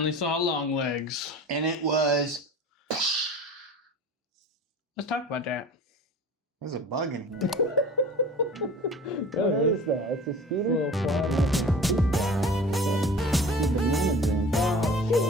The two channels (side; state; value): both; normal; correlation 0.41